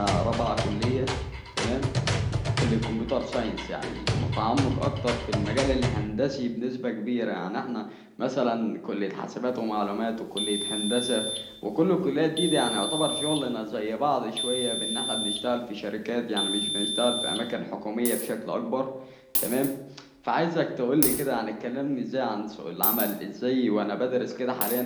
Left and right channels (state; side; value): identical; both; correlation 1.00